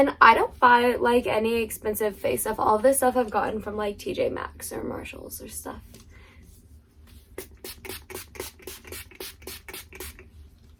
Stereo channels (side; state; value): both; identical; correlation 1.00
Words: I don't buy any expensive face stuff. All of this stuff I've gotten from TJ Maxx or Marshalls or stuff.